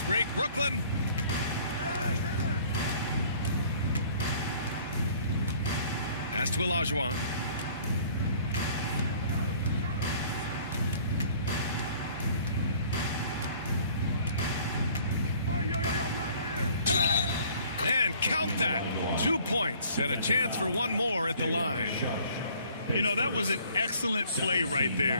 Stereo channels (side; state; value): both; inverted; correlation -0.54